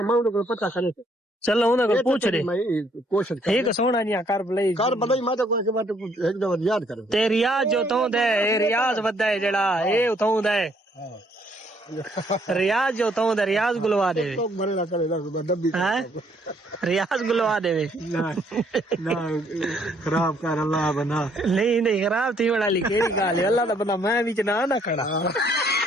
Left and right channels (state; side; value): normal; both; correlation 0.67